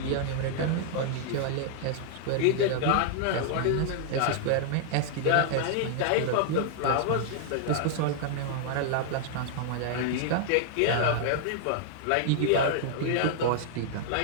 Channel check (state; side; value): different; both; correlation -0.01